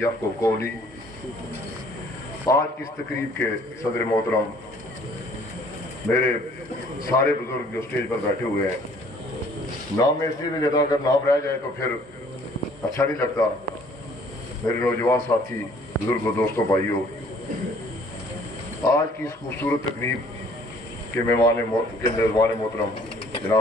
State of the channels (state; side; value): normal; both; correlation 0.57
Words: क़ौली। आज की इस तकरीब के सदर मोहतरम, मेरे सारे बुजुर्ग जो स्टेज पर बैठे हुए हैं, नाम में इसलिए नहीं लेता, अगर नाम रह जाए तो फिर अच्छा नहीं लगता। मेरे नौजवान साथी, बुजुर्गों, दोस्तों, भाइयों, आज की इस खूबसूरत तकरीब के मेहमान मोहतरम